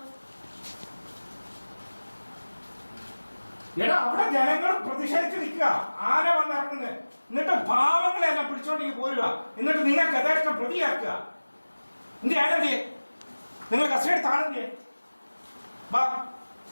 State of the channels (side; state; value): both; inverted; correlation -1.00